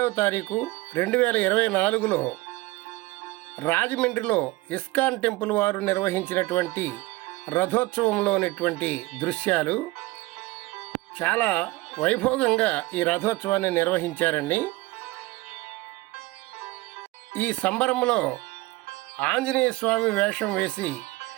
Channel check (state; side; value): quieter; left; 20.7 dB